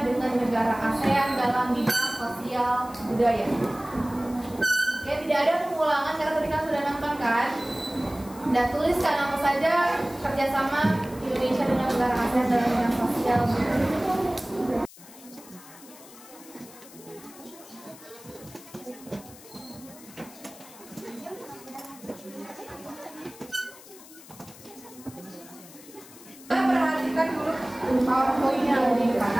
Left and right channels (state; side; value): noise; left; hiss, 20 dB below the sound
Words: dengan negara ASEAN dalam bidang sosial budaya. Oke, tidak ada pengulangan karena tadi kan sudah nonton kan? Dan tuliskan apa saja kerjasama Indonesia dengan negara ASEAN dalam bidang sosial budaya. Perhatikan dulu PowerPoint yang ada di depan.